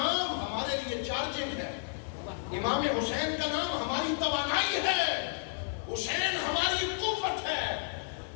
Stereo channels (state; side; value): silent; right; 57 dB below the other